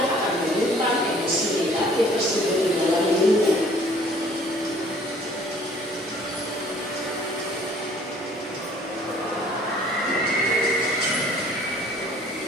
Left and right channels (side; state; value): both; normal; correlation 0.56